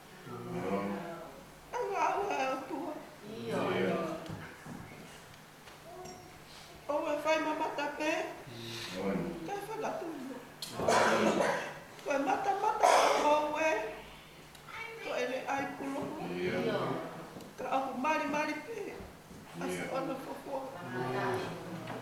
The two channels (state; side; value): identical; both; correlation 1.00